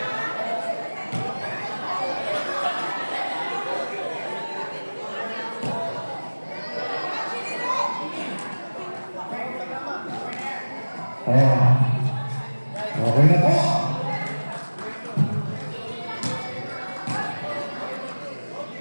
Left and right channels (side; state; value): both; inverted; correlation -1.00